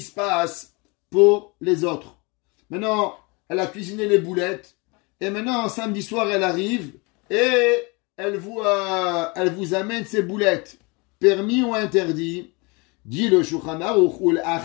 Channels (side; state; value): right; quieter; 28.5 dB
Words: se passe pour les autres? Maintenant, elle a cuisiné les boulettes, et maintenant, samedi soir, elle arrive, et elle vous amène ses boulettes. Permis ou interdit? Dit le Shulchan Aruch, ul